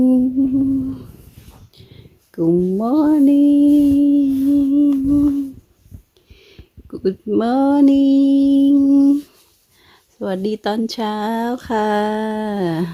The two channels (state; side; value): identical; both; correlation 1.00